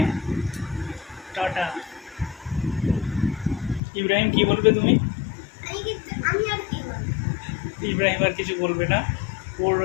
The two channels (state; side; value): drops out; right; at 3.8 s